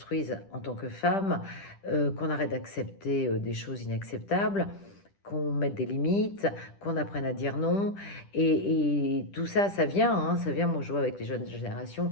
en tant que femmes, qu'on arrête d'accepter des choses inacceptables, qu'on mette des limites, qu'on apprenne à dire non. Et tout ça, ça vient, hein, ça vient. Moi, je vois avec les jeunes générations,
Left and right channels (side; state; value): right; late; 10 ms